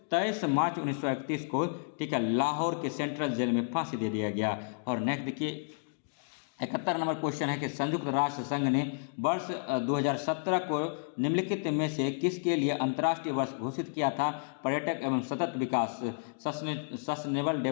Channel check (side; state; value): right; silent; digital silence